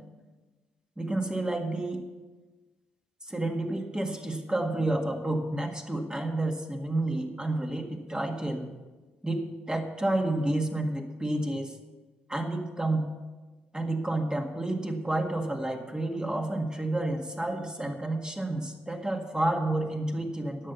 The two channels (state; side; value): normal; both; correlation 0.91